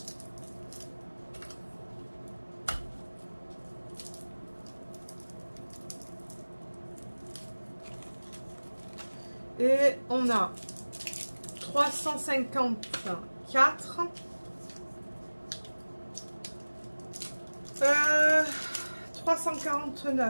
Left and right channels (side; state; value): both; inverted; correlation -1.00